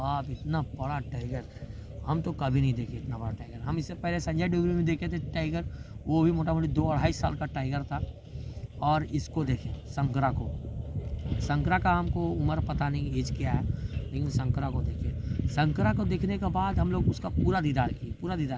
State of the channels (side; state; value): both; identical; correlation 1.00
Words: इतना बड़ा टाइगर हम तो कभी नहीं देखे, इतना बड़ा टाइगर। हम इससे पहले संजय डोगरी में देखे थे टाइगर, वो भी मोटा मोटी 2-2.5 साल का टाइगर था। और इसको देखें शंकरा का हमको उम्र पता नहीं एज क्या है, लेकिन शंकरा को देखे। शंकरा को देखने के बाद हम लोग उसका पूरा दीदार